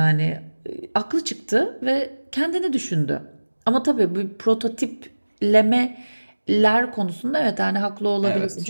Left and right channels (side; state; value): both; inverted; correlation -1.00